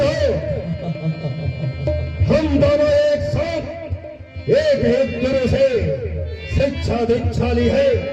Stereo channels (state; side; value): identical; both; correlation 1.00